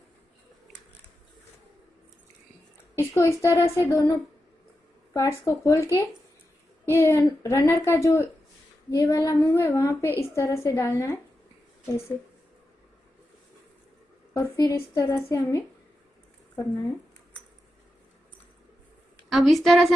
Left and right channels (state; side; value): normal; both; correlation 0.89